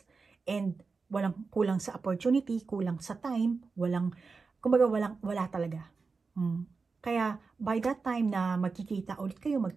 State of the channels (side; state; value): left; quieter; 4.5 dB